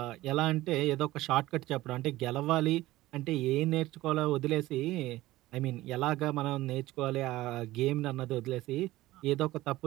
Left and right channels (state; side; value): quieter; left; 17.2 dB